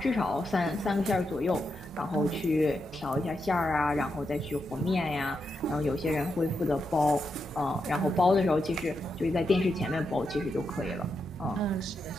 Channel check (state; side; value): normal; both; correlation 0.85